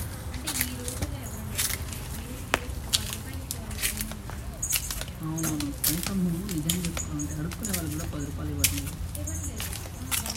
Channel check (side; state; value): both; identical; correlation 1.00